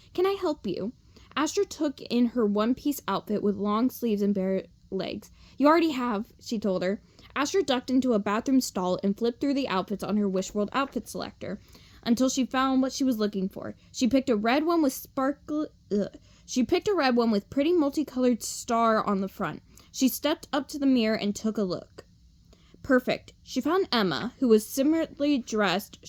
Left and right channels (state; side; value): identical; both; correlation 1.00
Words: Can I help you? Astra took in her one-piece outfit with long sleeves and bare legs. You already have, she told her. Astra ducked into a bathroom stall and flipped through the outfits on her Wishworld outfit selector until she found what she was looking for. She picked a red one with pretty multicolored star on the front. She stepped up to the mirror and took a look. Perfect. She found Emma, who was similarly dressed,